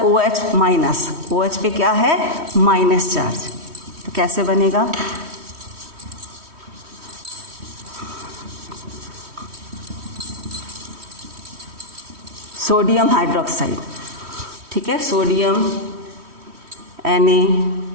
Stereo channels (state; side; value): late; left; 3.1 ms